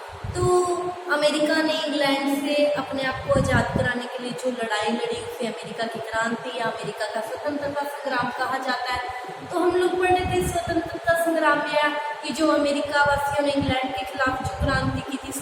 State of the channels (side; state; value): both; identical; correlation 1.00